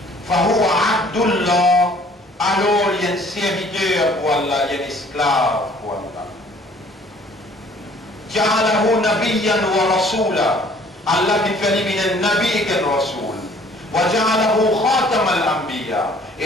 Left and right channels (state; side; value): normal; both; correlation 0.56